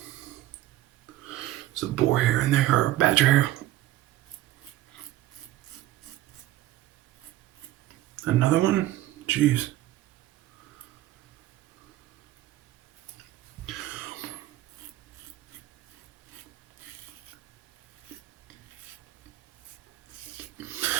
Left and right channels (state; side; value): quieter; left; 14.9 dB